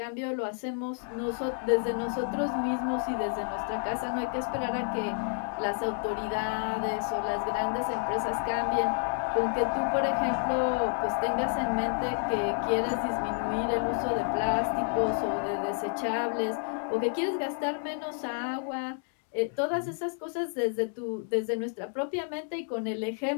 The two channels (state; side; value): silent; right; 58 dB below the other